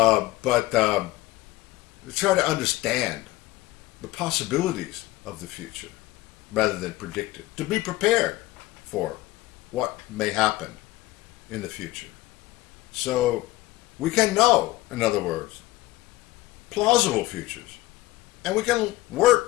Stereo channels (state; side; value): quieter; right; 17.9 dB